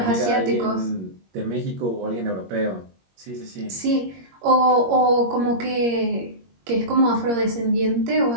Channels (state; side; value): late; left; 21 ms